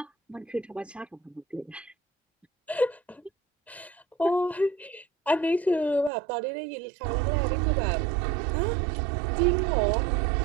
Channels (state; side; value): drops out; left; at 6.1 s